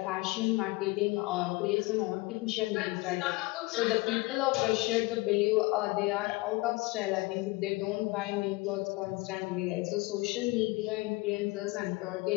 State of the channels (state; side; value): quieter; right; 23.1 dB